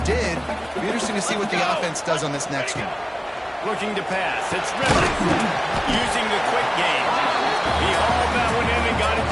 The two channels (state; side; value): identical; both; correlation 1.00